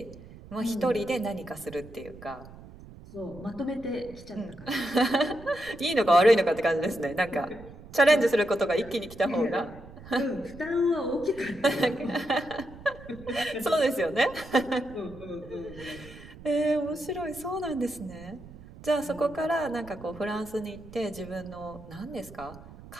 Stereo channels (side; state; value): right; noise; rumble, 18 dB below the sound